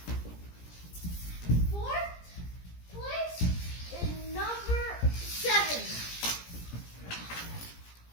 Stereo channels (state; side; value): late; right; 17 ms